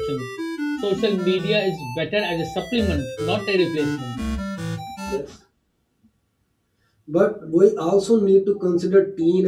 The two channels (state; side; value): identical; both; correlation 1.00